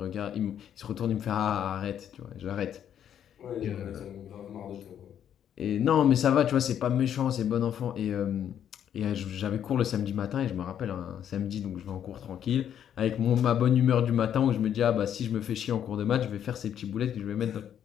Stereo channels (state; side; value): quieter; right; 9.6 dB